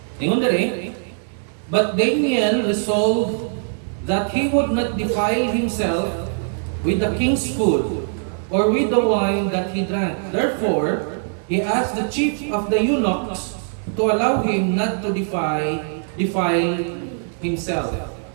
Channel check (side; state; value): left; silent; 63 dB below the other